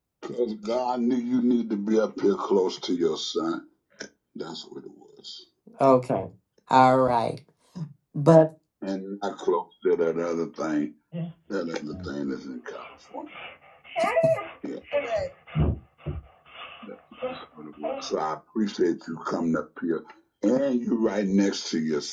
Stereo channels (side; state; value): both; identical; correlation 1.00